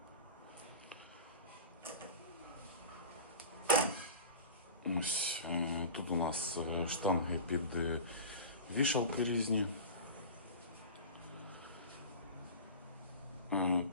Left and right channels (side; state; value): both; inverted; correlation -0.32